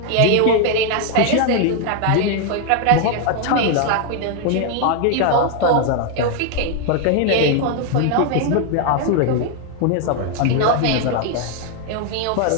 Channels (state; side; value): different; both; correlation 0.00